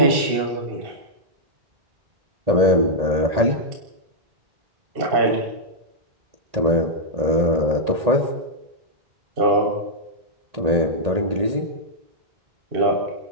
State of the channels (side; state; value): left; late; 1.8 ms